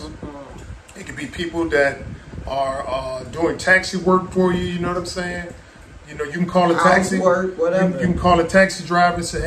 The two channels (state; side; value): identical; both; correlation 1.00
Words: it could be people that are doing taxi work for you, you know what I'm saying? You know, you can call a taxi, work, whatever. You can call a taxi driver and say,